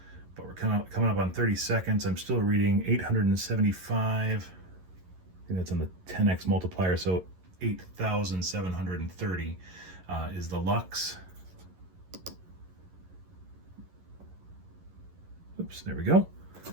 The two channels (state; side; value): late; left; 11 ms